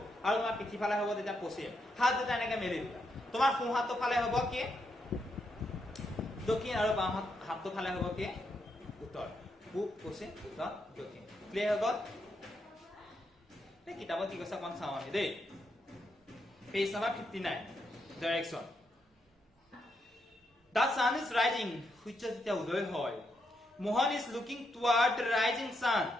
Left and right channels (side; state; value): both; normal; correlation 0.80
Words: আৰু তোমাৰ পিঠিফালে হ'ব তেতিয়া পশ্চিম হাত দুটা এনেকৈ মেলি দিবা তোমাৰ সোঁ হাতটো ফালে হ'ব কি দক্ষিণ আৰু বাম হাতটো ফালে হ'ব কি উত্তৰ পূব পশ্চিম উত্তৰ দক্ষিণ ক্লিয়াৰ হৈ গ'ল কিতাপত কি কৈছে অকণ চাওঁ আমি দেই page number 59 direction The sun is rising সূৰ্য যেতিয়া উদয় হয় Mohan is looking toward the rising sun